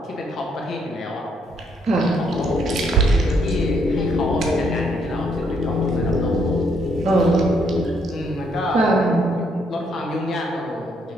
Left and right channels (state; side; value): normal; both; correlation 0.72